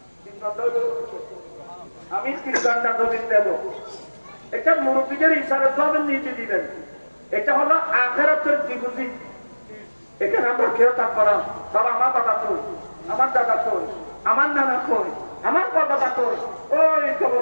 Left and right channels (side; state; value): both; inverted; correlation -1.00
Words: 3 ঘন্টা আমি 3 ঘন্টা দবিন দেব। এটা মুরব্বীদের ইসালে প্রদান নিতে দিবেন। এটা হলো আখিরাতের ডিপোজিট। এখানে আমরা কেউ থাকবো না। বাবা আমার বাবা কই, আমার দাদা কই, আমার নানা কই, আমার বাবা কই, ওই